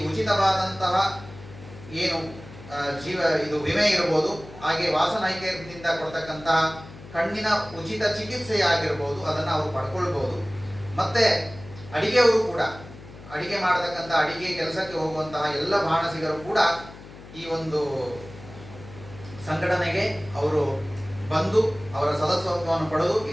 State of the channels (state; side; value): noise; left; hum, 17 dB below the sound